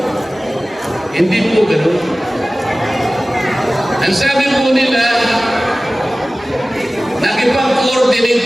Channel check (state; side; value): normal; both; correlation 0.97